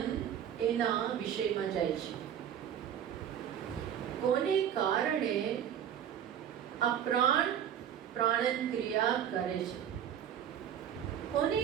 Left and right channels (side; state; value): left; quieter; 9.5 dB